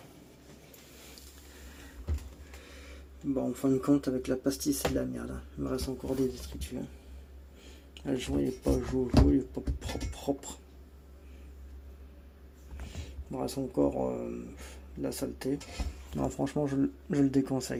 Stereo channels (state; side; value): identical; both; correlation 1.00